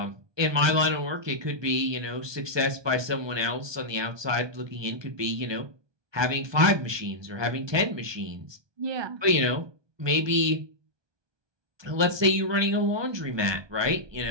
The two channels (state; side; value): late; left; 1.2 ms